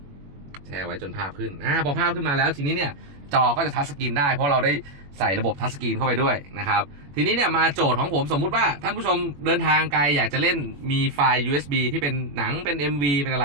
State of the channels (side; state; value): left; late; 21 ms